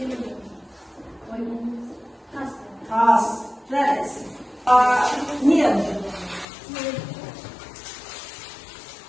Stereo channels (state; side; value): drops out; right; at 6.5 s